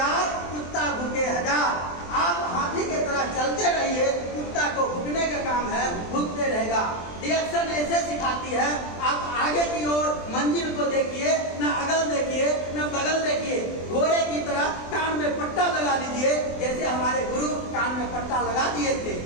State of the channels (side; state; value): right; late; 23 ms